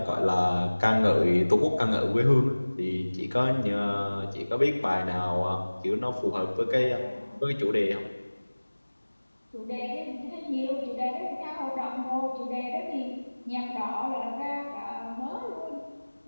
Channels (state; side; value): inverted; both; correlation -1.00